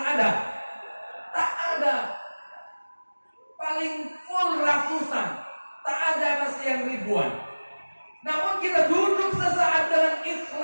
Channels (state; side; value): inverted; both; correlation -1.00